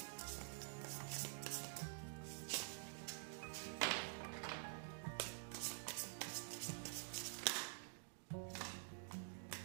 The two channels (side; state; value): left; silent; digital silence